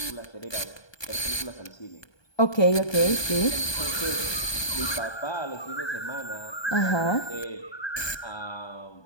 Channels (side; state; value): right; late; 1.2 ms